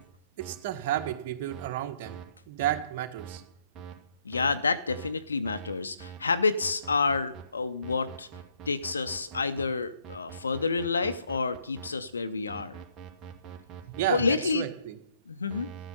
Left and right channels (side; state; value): both; inverted; correlation -0.69